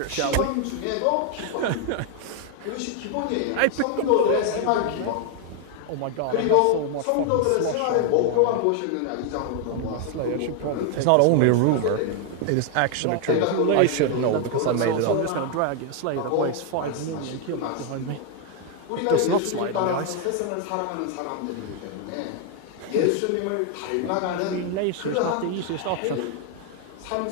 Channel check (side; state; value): both; different; correlation 0.01